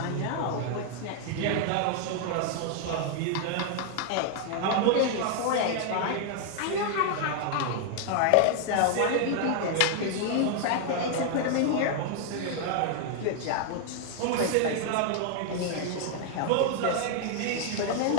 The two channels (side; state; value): both; different; correlation 0.00